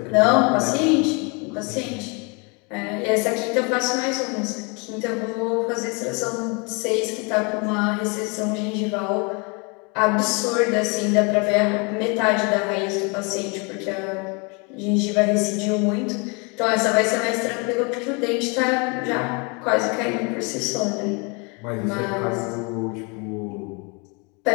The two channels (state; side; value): quieter; right; 32.0 dB